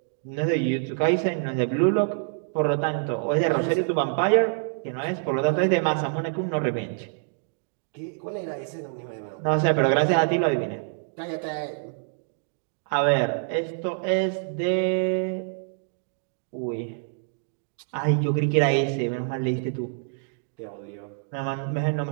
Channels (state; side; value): silent; left; digital silence